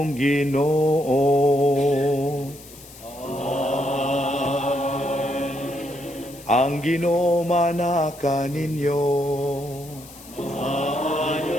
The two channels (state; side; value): noise; left; hiss, 20 dB below the sound